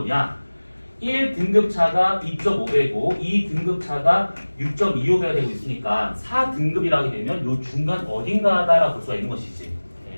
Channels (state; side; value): inverted; both; correlation -1.00